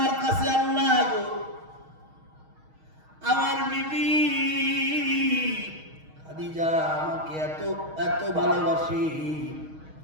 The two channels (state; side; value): late; left; 6.4 ms